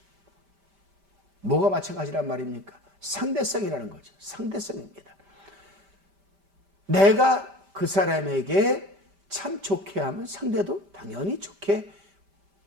뭐가 마찬가지란 말입니까? 상대성이라는 거죠. 상대성입니다. 내가 그 사람에게 참 좋게 하면 상대도 당연히 좋게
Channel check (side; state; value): left; late; 5.1 ms